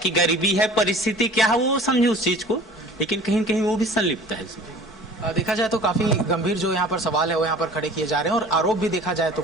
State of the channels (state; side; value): normal; both; correlation 0.45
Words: गरीबी है, परिस्थिति क्या है वो समझे उस चीज को, लेकिन कहीं कहीं वो भी संलिप्त है इसमें। देखा जाए तो काफी गंभीर जो यहाँ पर सवाल है वो यहाँ पर खड़े किए जा रहे हैं और आरोप भी देखा जाए तो